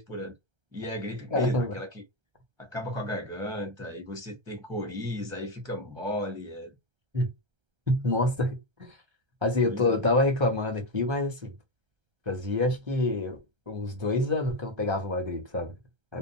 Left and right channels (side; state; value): left; late; 1.3 ms